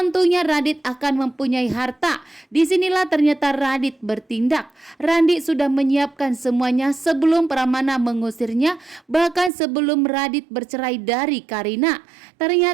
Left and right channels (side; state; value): left; drops out; at 9.5 s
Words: Radit akan mempunyai harta. Disinilah ternyata Radit bertindak. Radit sudah menyiapkan semuanya sebelum Pramana mengusirnya, bahkan sebelum Radit bercerai dari Karina.